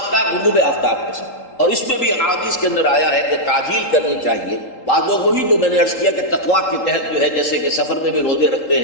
کا غروب آفتاب کے ساتھ، اور اس میں بھی احادیث کے اندر آیا ہے کہ تعجیل کرنی چاہیے۔ بعض لوگ وہی جو میں نے عرض کیا کہ تقویٰ کے تحت جو ہے جیسے کہ سفر میں بھی روزے رکھتے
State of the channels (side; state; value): right; late; 3.8 ms